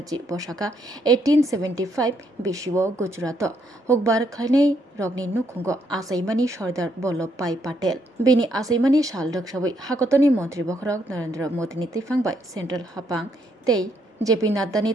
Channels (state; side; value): normal; both; correlation 0.74